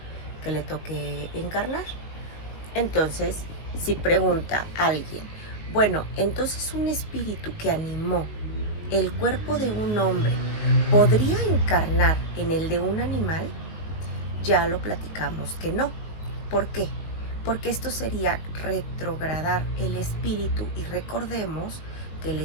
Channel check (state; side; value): late; right; 19 ms